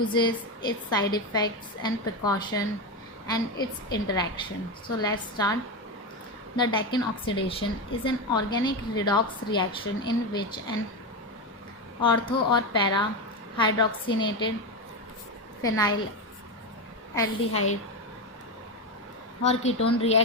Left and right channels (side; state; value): both; normal; correlation 0.13